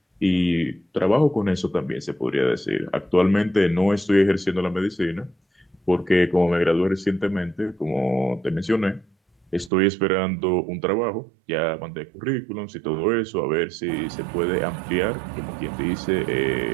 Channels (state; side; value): drops out; left; at 9.7 s